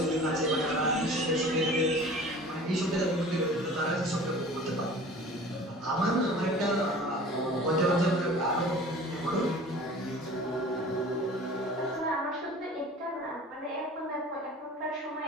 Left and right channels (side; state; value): both; normal; correlation 0.43